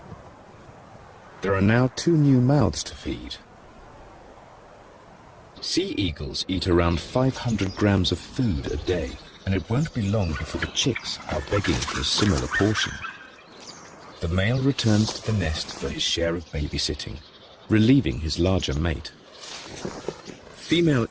There are now 2 new mouths to feed. Sea eagles eat around 500 grams of food a day, and it won't be long before the chicks are begging for a similar portion. The male returns to the nest for his share of babysitting, relieving his larger mate. Female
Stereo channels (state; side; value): identical; both; correlation 1.00